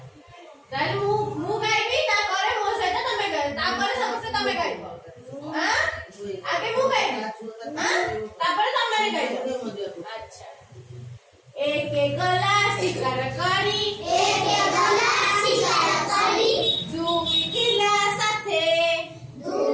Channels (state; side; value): identical; both; correlation 1.00